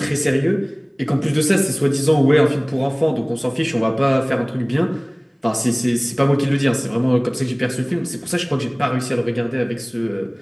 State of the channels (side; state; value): both; identical; correlation 1.00